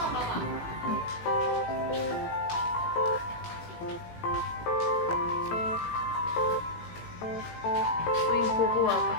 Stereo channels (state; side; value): late; right; 18 ms